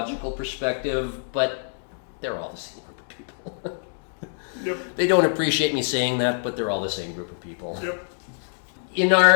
perspective, but they're all the same group of people. Yep. They don't appreciate me saying that, but they're all the same group of people. Yep. In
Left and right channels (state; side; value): silent; right; digital silence